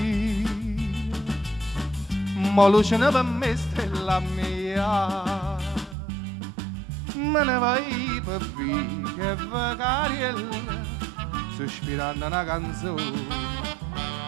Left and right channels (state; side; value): drops out; left; at 6.0 s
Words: Ma luce per me stella mia, me ne vai per via che vacariella, sospirando una canzone,